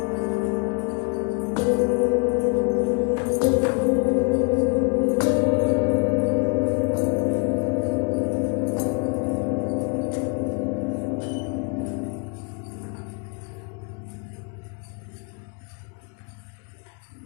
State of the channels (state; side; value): quieter; right; 36.0 dB